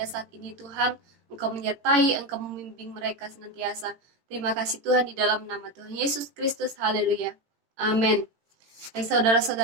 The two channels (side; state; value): left; late; 18 ms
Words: saat ini Tuhan. Engkau menyertai, Engkau membimbing mereka senantiasa. Terima kasih Tuhan di dalam nama Tuhan Yesus Kristus. Haleluya. Amin. Baik